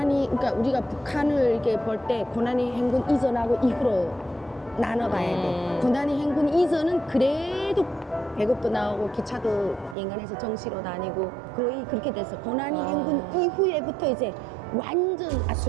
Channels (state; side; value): drops out; left; at 10.0 s